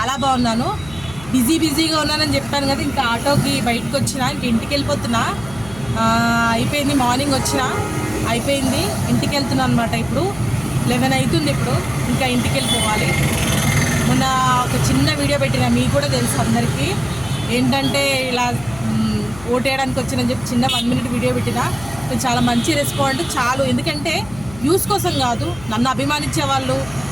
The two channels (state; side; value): noise; left; hum, 17 dB below the sound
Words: బాగున్నాను. బిజీగా ఉన్నానని చెప్పాను కదా, ఇంకా ఆటోకి బయటకు వచ్చిన, ఇంక ఇంటికి వెళ్ళిపోతున్నా. అయిపోయింది, మార్నింగ్ వచ్చిన అయిపోయింది, ఇంటికి వెళ్తున్నా అనమాట. ఇప్పుడు 11 అవుతుంది. ఇప్పుడు ఇంకా ఇంటికి వెళ్ళిపోవాలి. మొన్న ఒక చిన్న వీడియో పెట్టిన, మీకు కూడా తెలుసు అందరికీ. ఏంటంటే ఇలా ఓటేయడానికి వచ్చినని చెప్పి చిన్న 1 మినిట్ వీడియో పెట్టిన. చాలా మంచి రెస్పాండ్ చాలు. ఎందుకంటే వ్యూస్ కోసం కాదు, నన్ను అభిమానించే వాళ్ళు,